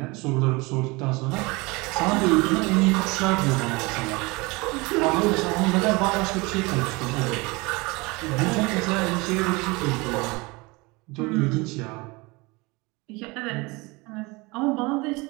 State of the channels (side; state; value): left; quieter; 24.9 dB